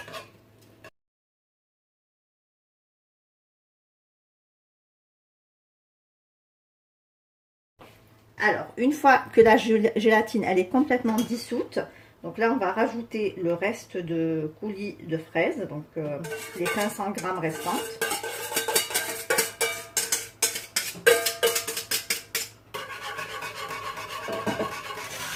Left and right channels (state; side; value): identical; both; correlation 1.00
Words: Alors, une fois que la gélatine elle est complètement dissoute, donc là on va rajouter le reste de coulis de fraises, donc les 500 g restantes.